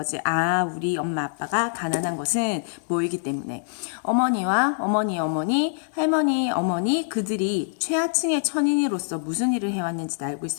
우리 엄마 아빠가 가난한 것은 뭐이기 때문에 어머니와 어머니, 할머니, 어머니 그들이 최하층의 천인으로서 무슨 일을 해왔는지도 알고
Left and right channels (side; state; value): right; silent; digital silence